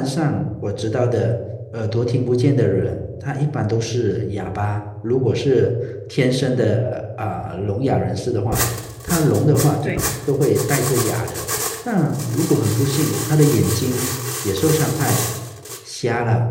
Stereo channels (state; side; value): identical; both; correlation 1.00